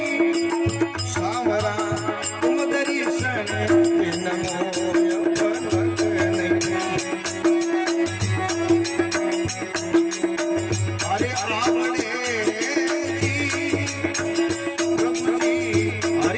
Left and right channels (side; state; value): both; identical; correlation 1.00